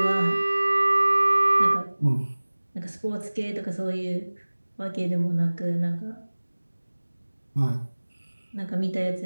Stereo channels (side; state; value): both; inverted; correlation -1.00